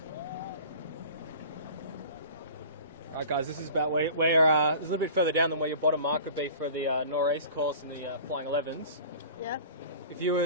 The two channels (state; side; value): inverted; both; correlation -0.41